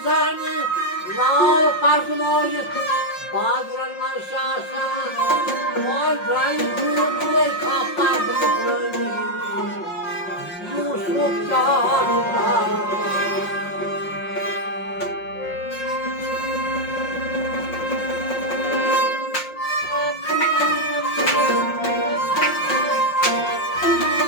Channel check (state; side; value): late; right; 5.6 ms